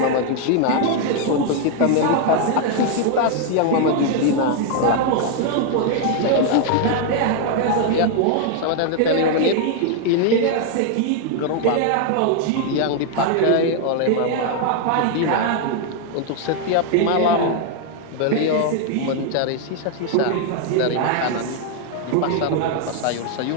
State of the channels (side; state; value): both; different; correlation 0.00